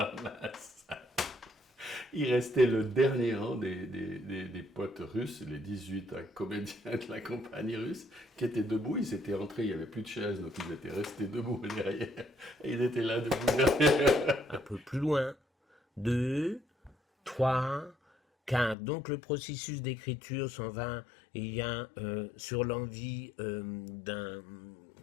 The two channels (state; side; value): drops out; right; at 18.8 s